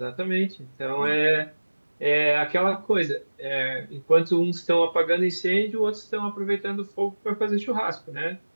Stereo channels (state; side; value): inverted; both; correlation -1.00